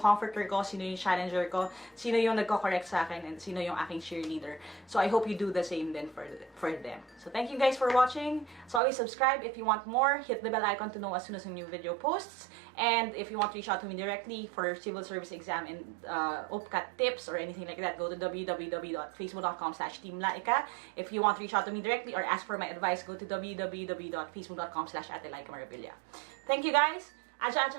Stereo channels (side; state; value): left; drops out; at 8.8 s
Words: comforter ko, sino yung challenger ko, sino yung nagko-correct sa akin, and sino yung aking cheerleader. So I hope you do the same then for them. So thank you guys for watching. So always subscribe if you want more. Hit the bell icon to know as soon as a new video posts. And if you want to reach out to me directly for civil service exam and OPCAT tips or anything like that, go to www.facebook.com/Team Lyqa. If you want to reach out to me directly or ask for my advice, go to www.facebook.com/Ate Lyqa Marabilia. Thank you guys. Aja